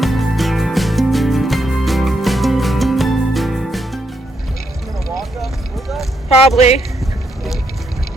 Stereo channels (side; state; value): both; normal; correlation 0.78